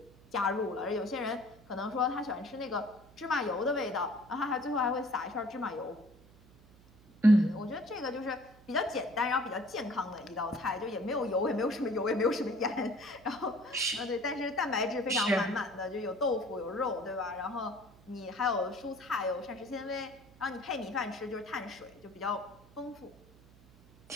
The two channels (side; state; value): right; noise; hum, 24 dB below the sound